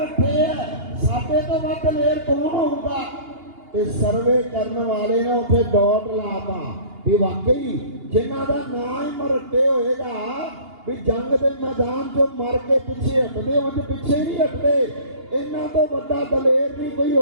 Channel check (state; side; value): late; left; 2.8 ms